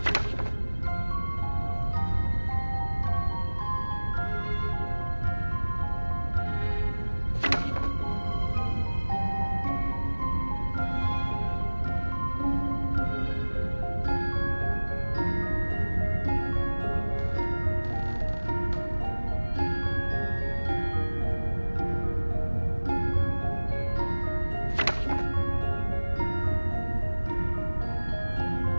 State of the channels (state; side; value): inverted; both; correlation -1.00